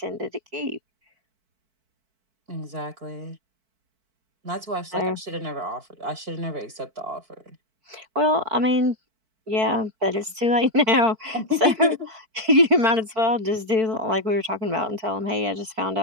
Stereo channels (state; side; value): late; left; 4.5 ms